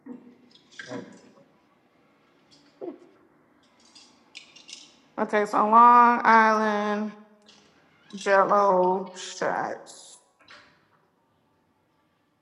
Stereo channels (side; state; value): both; identical; correlation 1.00